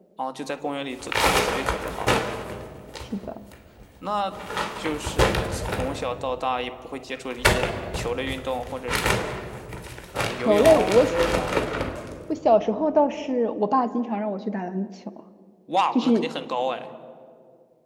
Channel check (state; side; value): identical; both; correlation 1.00